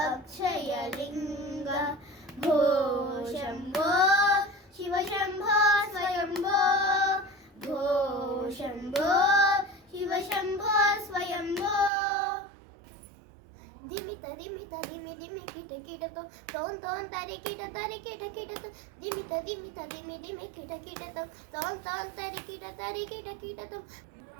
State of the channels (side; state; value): left; drops out; at 11.9 s